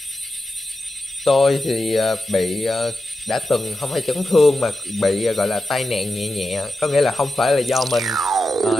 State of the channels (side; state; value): both; normal; correlation 0.89